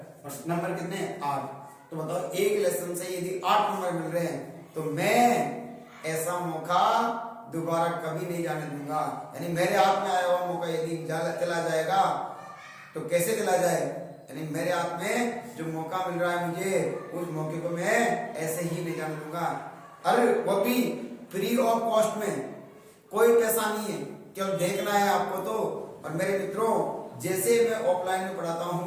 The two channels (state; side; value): identical; both; correlation 1.00